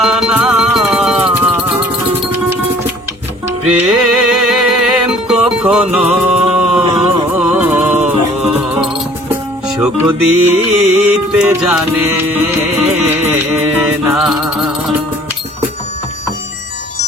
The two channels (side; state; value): both; normal; correlation 0.53